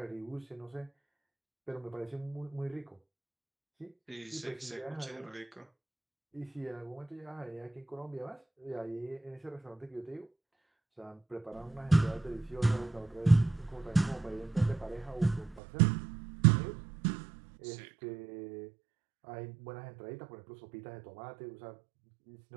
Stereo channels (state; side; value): drops out; left; at 15.6 s